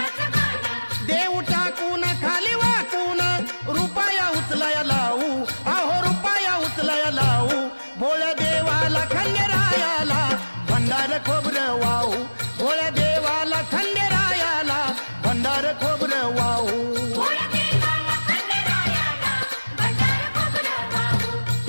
देव टाकून खाली वाकून रुपया उचलाया लावू अहो रुपया उचलाया लावू भोळ्या देवाला खंडेरायाला भंडार खोबरं वाहू भोळ्या देवाला खंडेरायाला भंडार खोबरं वाहू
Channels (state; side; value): inverted; both; correlation -1.00